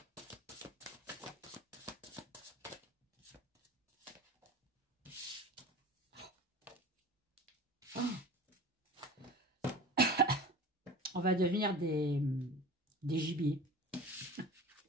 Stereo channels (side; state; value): both; normal; correlation 0.36